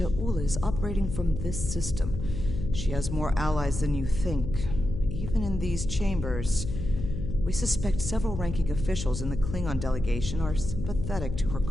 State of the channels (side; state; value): left; noise; hum, 6 dB below the sound